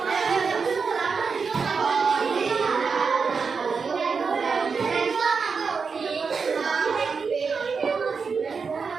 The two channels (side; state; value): left; quieter; 5.3 dB